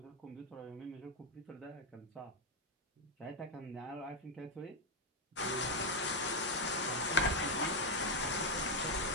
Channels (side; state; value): both; normal; correlation 0.04